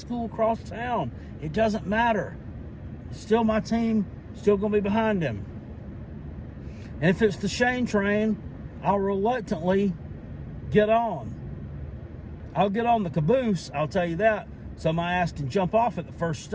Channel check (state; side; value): identical; both; correlation 1.00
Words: across town. It doesn't matter. It's still my team. Still going to be behind him. And if it's the Shane train, I'll reluctantly get on. I'll get on the caboose, I'll tell you that, so my ass can jump off at the first